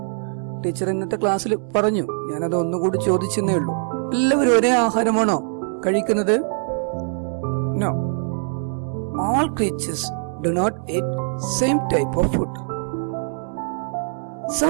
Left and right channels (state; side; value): silent; left; 63 dB below the other